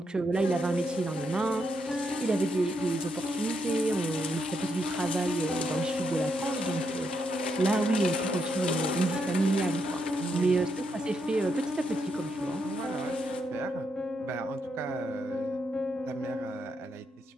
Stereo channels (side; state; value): both; normal; correlation 0.80